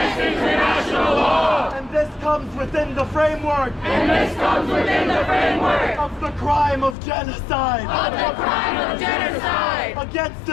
international law. And this comes within the framework And this comes within the framework of the crime of genocide. of the crime of genocide Against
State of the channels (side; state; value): right; drops out; at 7.0 s